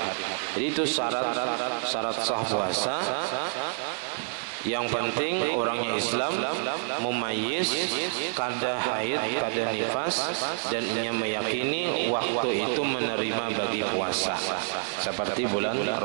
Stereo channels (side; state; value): left; silent; 59 dB below the other